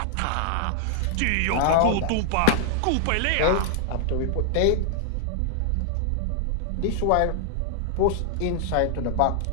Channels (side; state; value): both; different; correlation -0.01